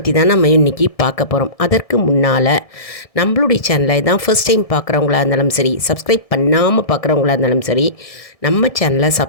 தான் நம்ம இன்றைக்கி பார்க்க போகிறோம். அதற்கு முன்னால் நம்மளுடைய சேனலை தான் ஃபர்ஸ்ட் டைம் பார்க்குறவங்களா இருந்தாலும் சரி, சப்ஸ்கிரைப் பண்ணாமல் பார்க்குறவங்களா இருந்தாலும் சரி, நம்ம சேனலை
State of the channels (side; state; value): right; late; 1.7 ms